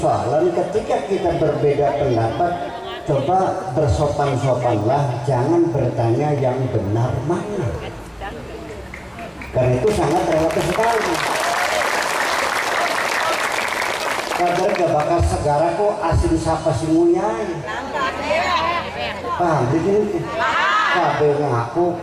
ketika kita berbeda pendapat. Coba bersopan-sopanlah, jangan bertanya yang benar mana, karena itu sangat relatif sekali. Kadang gak bakal segara kok asin sapa si muyai. Paham begini? Kabeh ngaku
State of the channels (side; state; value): both; identical; correlation 1.00